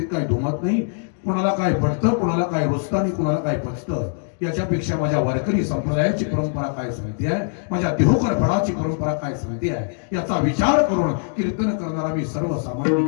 काही दुमत नाही. कोणाला काय पडतं, कोणाला काय रुचतं आणि कोणाला काय पचतं याच्यापेक्षा माझ्या वारकरी संप्रदायाची परंपरा काय सांगते आहे, माझ्या देहोकर फळाची परंपरा काय सांगते आहे याचा विचार करून कीर्तन करणारा मी सर्वसामान्य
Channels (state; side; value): silent; right; digital silence